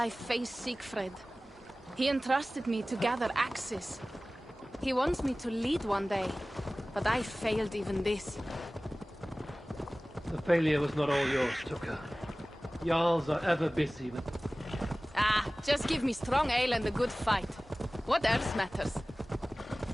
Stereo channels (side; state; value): both; normal; correlation 0.98